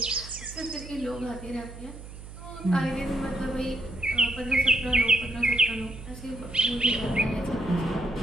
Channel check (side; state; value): right; noise; hum, 14 dB below the sound